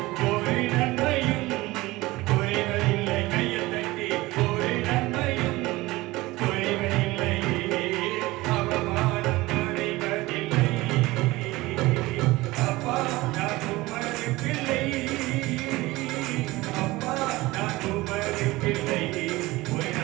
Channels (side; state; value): left; quieter; 19.9 dB